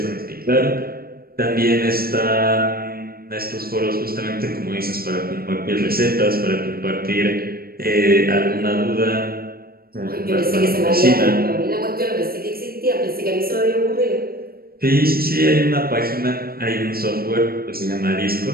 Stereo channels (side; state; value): left; late; 0.44 ms